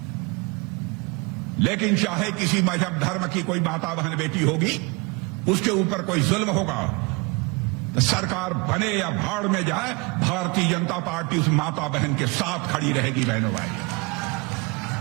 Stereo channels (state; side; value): quieter; left; 28.5 dB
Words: लेकिन चाहे किसी मजहब धर्म की कोई माता बहन बेटी होगी, उसके ऊपर कोई जुल्म होगा तो सरकार बने या भाड़ में जाए, भारतीय जनता पार्टी उस माता बहन के साथ खड़ी रहेगी। बहनों भाइयों,